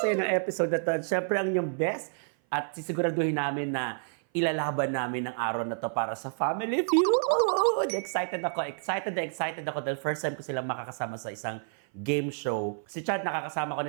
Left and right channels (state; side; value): silent; left; 56 dB below the other